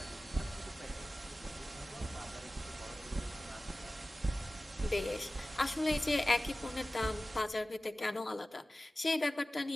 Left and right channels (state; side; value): normal; both; correlation 0.96